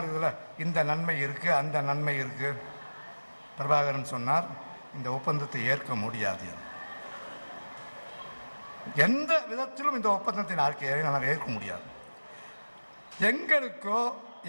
இதில் இந்த நன்மை இருக்குது, அந்த நன்மை இருக்குது. பிரபாகரன் சொன்னார், இந்த ஒப்பந்தத்தை ஏற்க முடியாது. எந்த விதத்திலும் இந்த ஒப்பந்தத்தை நாங்கள் ஏற்க முடியாது. எங்களுக்கோ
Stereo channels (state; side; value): inverted; both; correlation -1.00